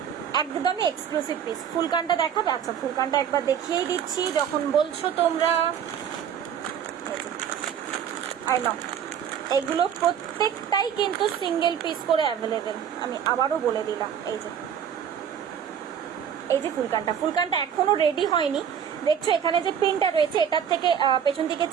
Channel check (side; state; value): left; quieter; 8.5 dB